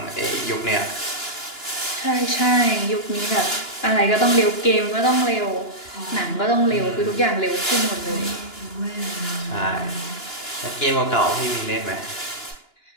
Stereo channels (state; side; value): late; right; 2.9 ms